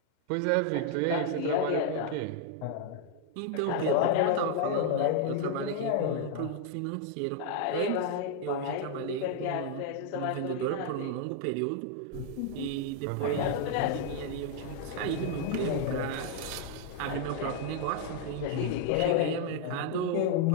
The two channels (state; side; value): different; both; correlation 0.00